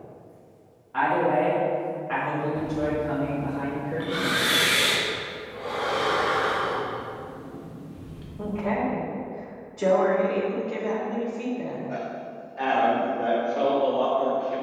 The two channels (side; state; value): both; identical; correlation 1.00